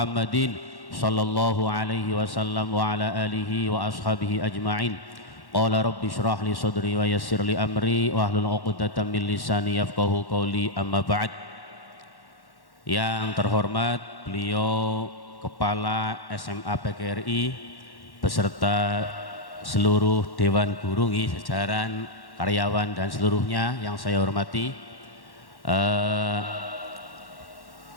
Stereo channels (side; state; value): right; late; 1.1 ms